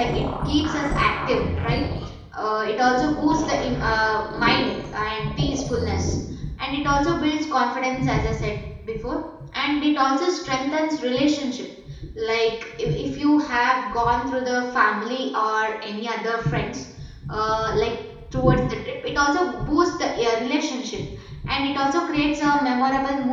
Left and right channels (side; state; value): both; identical; correlation 1.00